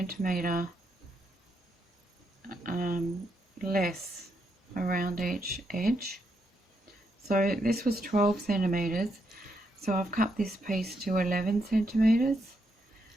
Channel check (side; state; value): both; normal; correlation 0.79